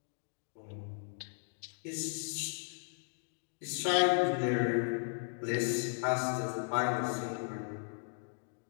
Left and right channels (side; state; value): right; silent; 54 dB below the other